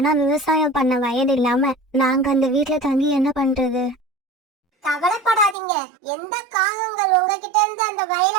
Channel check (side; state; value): left; drops out; at 5.6 s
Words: விவசாயம் பண்ண வயது இல்லாம நாங்க அந்த வீட்டுல தங்கி என்ன பண்றது? கவலைப்படாதீங்க. எந்த காகங்கள் உங்ககிட்ட இருந்து அந்த